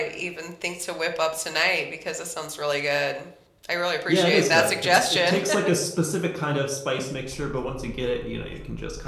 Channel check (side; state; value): both; identical; correlation 1.00